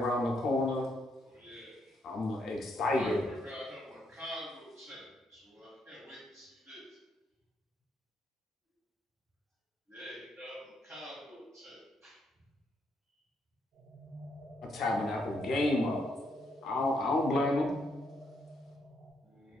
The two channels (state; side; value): normal; both; correlation 0.76